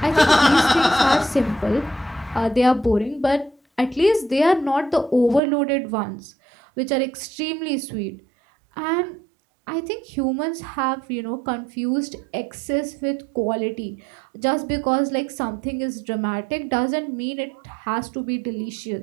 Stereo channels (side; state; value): left; drops out; at 5.4 s